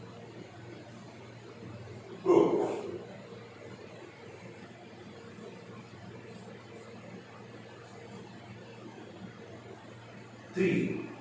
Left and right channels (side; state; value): both; identical; correlation 1.00